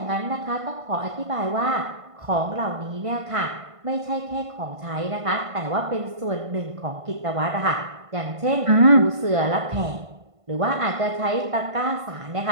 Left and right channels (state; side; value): late; left; 1.5 ms